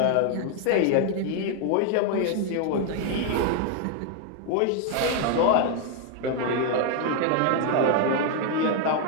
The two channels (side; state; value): both; different; correlation 0.00